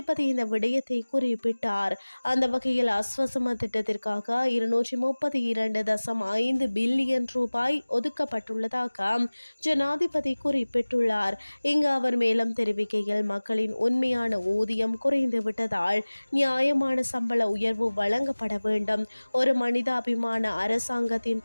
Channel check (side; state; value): both; inverted; correlation -1.00